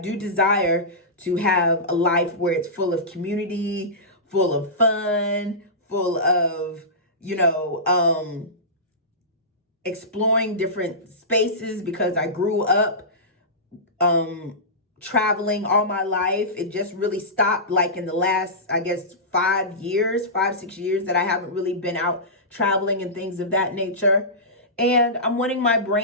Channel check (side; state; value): both; normal; correlation -0.18